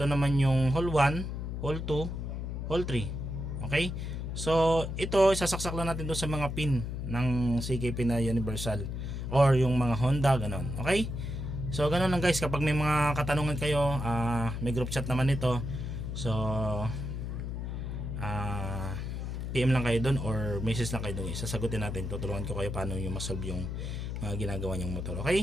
naman yung hole 1, hole 2, hole 3. Okay? So ito sasaksak lang natin doon sa mga pin ng CKP na universal or yung mga Honda, ganon. Okay? So ganon lang guys, kapag may mga katanungan kayo, may group chat naman ito. So PM lang kayo doon or message lang kayo doon. Sasagutin natin, tutulungan ko kayo paano yung masolve yung mga ginagawa niyong motor.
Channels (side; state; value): left; noise; hum, 4 dB below the sound